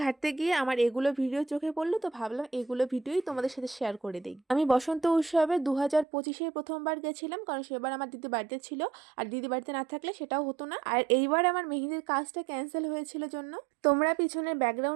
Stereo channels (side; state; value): left; drops out; at 6.1 s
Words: ঘাটতে গিয়ে আমার এগুলো ভিডিও চোখে পড়লো, তো ভাবলাম এগুলো ভিডিওই তোমাদের সাথে শেয়ার করে দিই। আমি বসন্ত উৎসবে 2025-এ প্রথমবার গেছিলাম, কারণ সেবার আমার দিদি বাড়িতে ছিল, আর দিদি বাড়িতে না থাকলে সেটাও হতো না। আর এইবার আমার মেহেন্দির কাজটা ক্যান্সেল হয়েছিল জন্য তোমরা পিছনের